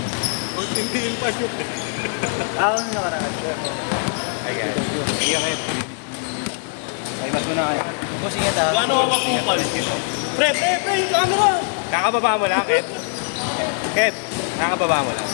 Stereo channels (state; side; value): silent; right; 60 dB below the other